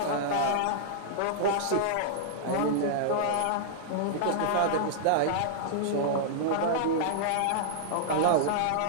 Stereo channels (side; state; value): both; different; correlation -0.01